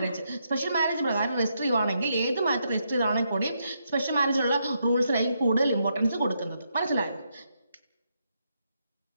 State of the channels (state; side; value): inverted; both; correlation -0.80